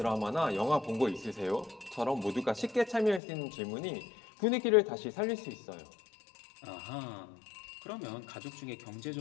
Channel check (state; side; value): drops out; right; at 3.2 s